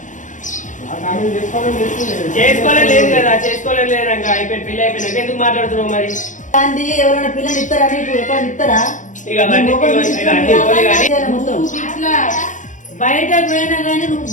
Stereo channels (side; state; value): right; late; 0.37 ms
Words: చేసుకోలేదు కదా చేసుకోలేదు అయిపోయి పెళ్లి అయిపోయినాక ఎందుకు మాట్లాడుతున్నావు మరి ఎవరైనా పిల్లలు ఇస్తారా నీకు ఎక్కడ ఇస్తారా ఇట్లా బయటకు పోయినా గానీ నువ్వు